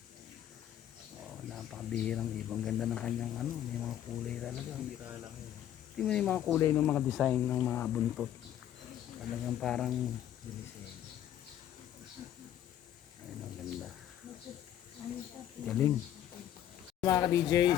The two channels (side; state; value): right; quieter; 11.1 dB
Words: Napakabihirang ibang ganda ng kanyang ano, may mga kulay talaga. Bira lang yun. Tingnan mo yung mga kulay ng mga design ng mga buntot. Talagang parang ayun, ang ganda. Galing. Mga ka-DJ,